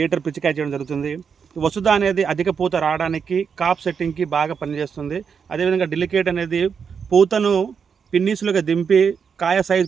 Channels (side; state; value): left; quieter; 6.5 dB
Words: పిచికారీ చేయడం జరుగుతుంది. వసుధా అనేది అధిక పూత రావడానికి కాప్ సెట్టింగ్కి బాగా పనిచేస్తుంది. అదేవిధంగా డెలికేట్ అనేది పూతను పిన్నీసులుగా దింపి కాయ సైజు